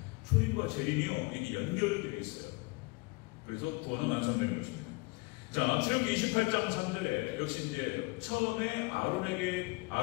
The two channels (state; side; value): quieter; right; 26.5 dB